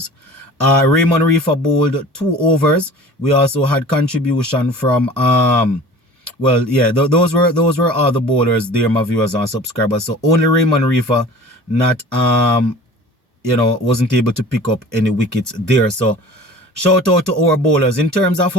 Raymond Reefer bowled 2 overs. We also had contribution from those were all the bowlers there, my viewers and subscribers. So only Raymond Reefer not wasn't able to pick up any wickets there. So shout out to our bowlers. In terms of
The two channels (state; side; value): normal; both; correlation 0.42